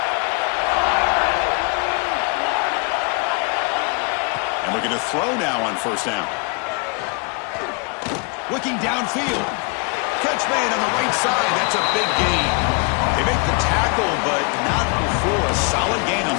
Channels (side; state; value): right; quieter; 34.1 dB